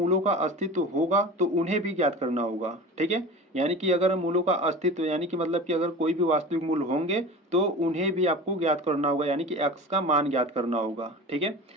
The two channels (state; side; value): normal; both; correlation 0.34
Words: का अस्तित्व होगा तो उन्हें भी ज्ञात करना होगा, ठीक है। यानी कि अगर मूलों का अस्तित्व यानी कि मतलब कि अगर कोई भी वास्तविक मूल्य होंगे तो उन्हें भी आपको ज्ञात करना होगा, यानी कि x का मान ज्ञात करना होगा, ठीक है।